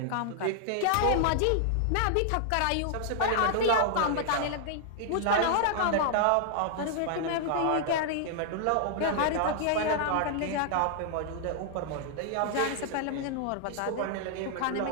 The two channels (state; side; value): different; both; correlation 0.00